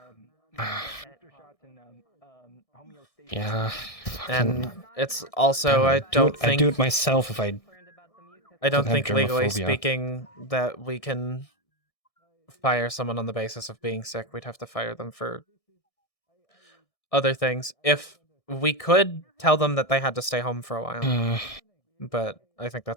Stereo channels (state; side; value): late; right; 1.6 ms